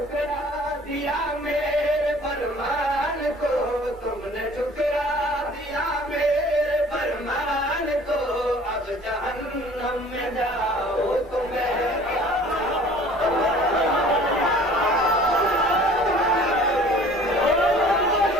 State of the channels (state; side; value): normal; both; correlation 0.50